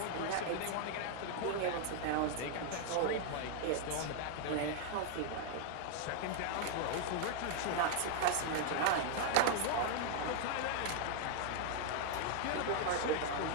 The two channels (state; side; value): different; both; correlation 0.00